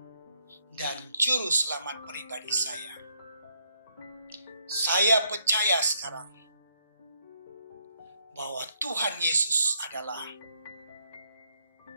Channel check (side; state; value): both; inverted; correlation -0.73